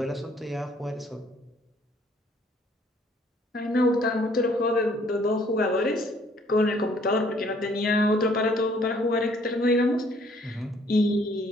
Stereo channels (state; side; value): normal; both; correlation 0.62